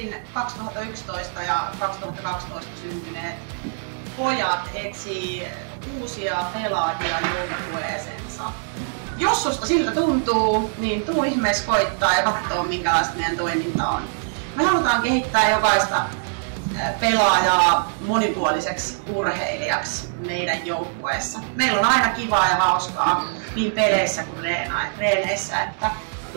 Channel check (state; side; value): silent; left; digital silence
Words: 2011 ja 2012 syntyneet pojat etsii uusia pelaajia joukkueeseensa. Jos susta siltä tuntuu, niin tuu ihmeessä koittaa ja katsoo minkälaista meidän toiminta on. Me halutaan kehittää jokaista pelaajaa monipuoliseksi urheilijaksi meidän joukkueessa. Meillä on aina kivaa ja hauskaa niin peleissä kuin reeneissä.